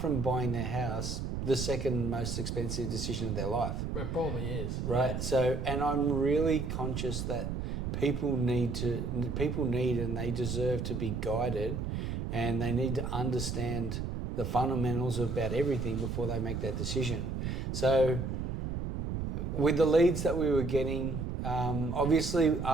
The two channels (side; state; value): right; noise; rumble, 3 dB below the sound